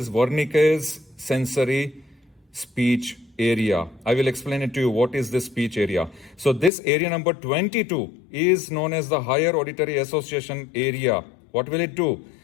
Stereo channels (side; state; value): right; drops out; at 6.7 s